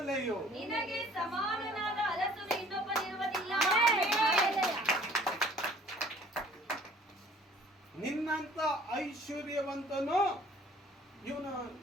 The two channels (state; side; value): normal; both; correlation 0.54